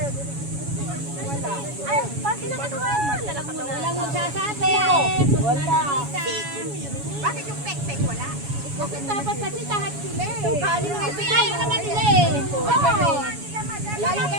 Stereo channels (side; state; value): left; late; 7.1 ms